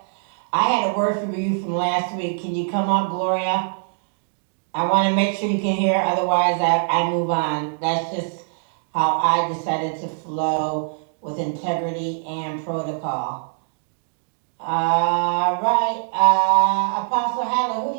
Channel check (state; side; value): silent; left; digital silence